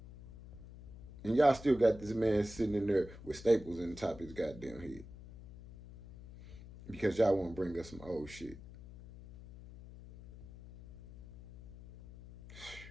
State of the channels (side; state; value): left; noise; hum, 16 dB below the sound